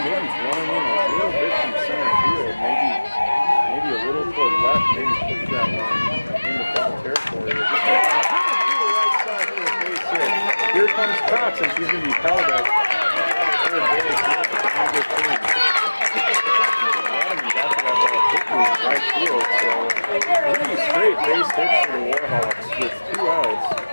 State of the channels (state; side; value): inverted; both; correlation -1.00